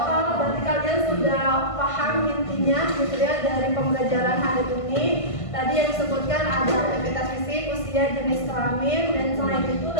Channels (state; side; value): late; right; 1.5 ms